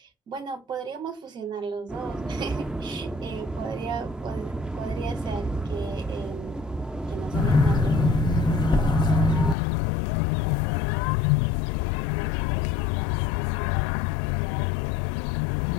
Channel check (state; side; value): drops out; right; at 9.6 s